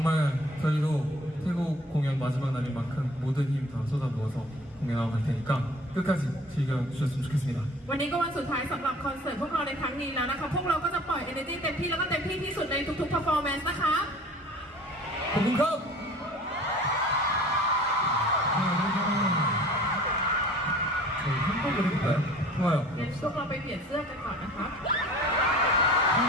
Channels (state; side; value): normal; both; correlation 0.47